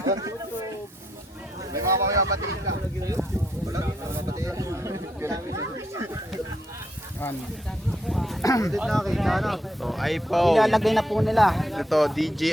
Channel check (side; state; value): both; normal; correlation 0.77